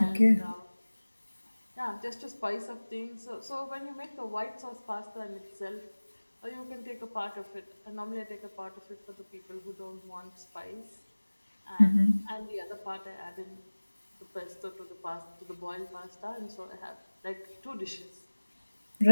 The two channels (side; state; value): both; inverted; correlation -1.00